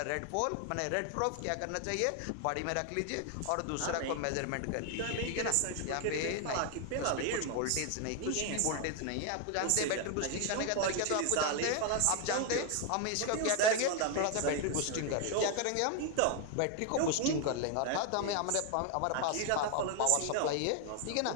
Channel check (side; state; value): both; different; correlation 0.01